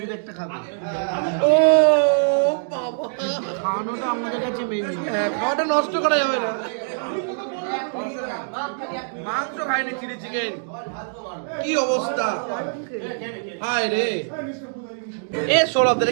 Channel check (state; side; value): silent; left; digital silence